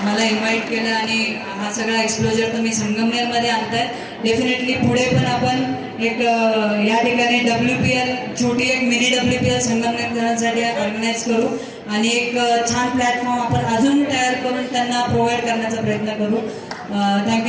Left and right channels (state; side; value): identical; both; correlation 1.00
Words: मला इन्व्हाइट केलं आणि हा सगळा एक्सपोजर तुम्ही संगमनेरमध्ये आणताय। डेफिनेटली पुढे पण आपण एक या ठिकाणी WPL, छोटी एक मिनी WPL संगमनेरकरांसाठी ऑर्गनाईज करू आणि एक छान प्लॅटफॉर्म आपण अजून तयार करून त्यांना प्रोव्हाइड करण्याचा प्रयत्न करू।